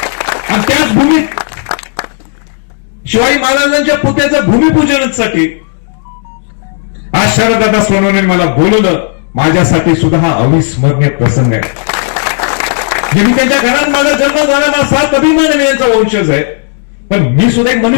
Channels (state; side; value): silent; right; 56 dB below the other